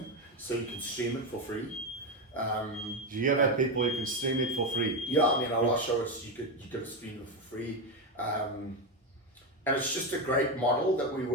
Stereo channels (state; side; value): normal; both; correlation 0.11